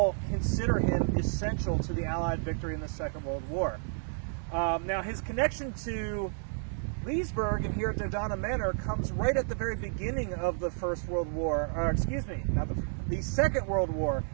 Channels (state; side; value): silent; left; 57 dB below the other